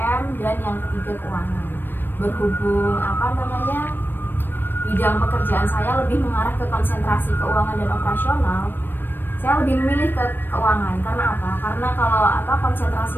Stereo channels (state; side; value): late; right; 0.095 ms